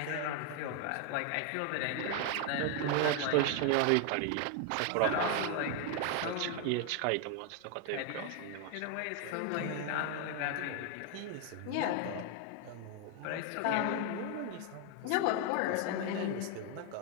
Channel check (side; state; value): both; different; correlation 0.01